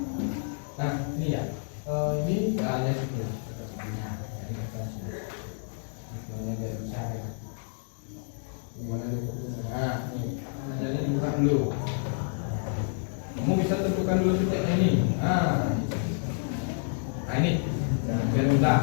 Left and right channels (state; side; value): silent; right; 59 dB below the other